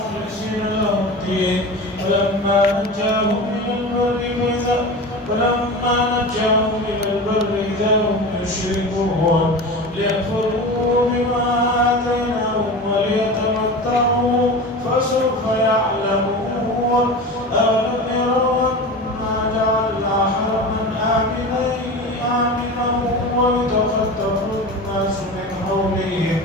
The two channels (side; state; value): both; normal; correlation 0.30